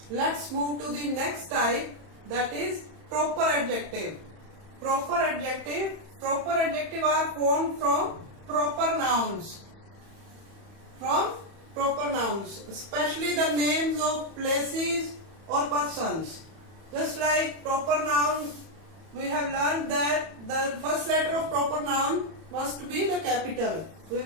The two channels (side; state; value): left; late; 31 ms